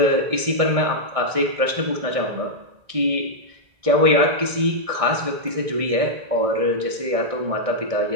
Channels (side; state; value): left; late; 1.6 ms